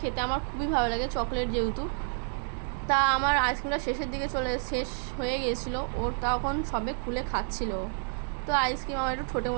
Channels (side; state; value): left; silent; 58 dB below the other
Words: খেতে আমার খুবই ভালো লাগে, চকলেট যেহেতু। তা আমার আইসক্রিমটা শেষের দিকে শেষ হয়ে গিয়েছিলো, ওর তখন সবে খুলে খাচ্ছিল। তো আইসক্রিম আমার একটু ছোটো